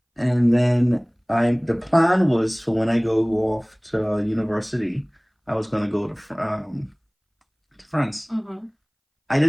And then the plan was for when I go off to university, I was gonna go to France. Mm-hmm. I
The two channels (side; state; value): both; identical; correlation 1.00